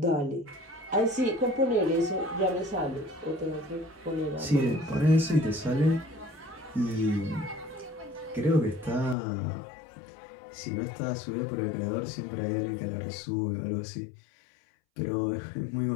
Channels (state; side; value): drops out; right; at 9.2 s